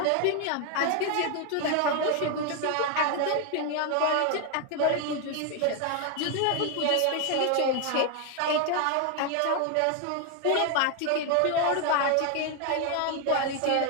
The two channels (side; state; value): both; different; correlation 0.01